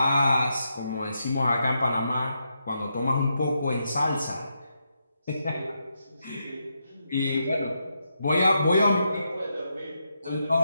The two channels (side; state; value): both; inverted; correlation -0.83